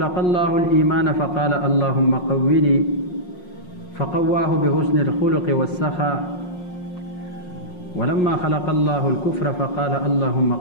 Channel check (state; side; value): late; right; 5.6 ms